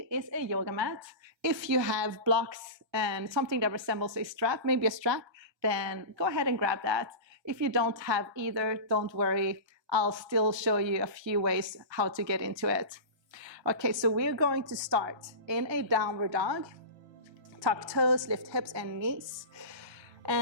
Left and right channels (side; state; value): left; late; 1.3 ms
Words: is a yoga mat. If you have blocks and something that resembles a strap, maybe a strap, then go ahead and grab that. If you don't have either, don't worry. I'll still show you a few ways how to get into it. Okay, so we're going to start in a downward dog. Tuck toes, lift hips and knees.